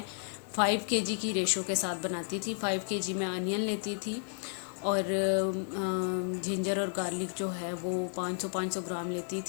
5 केजी की रेशो के साथ बनाती थी। 5 केजी में अनियन लेती थी और जिंजर और गार्लिक जो है वो 500 ग्राम लेती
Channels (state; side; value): silent; right; 56 dB below the other